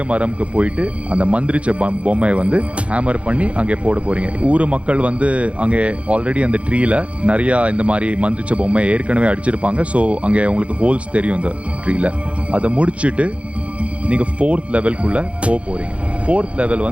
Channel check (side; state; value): left; late; 0.062 ms